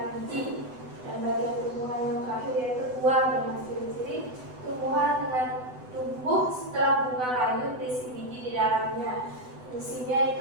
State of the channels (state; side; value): late; left; 8.0 ms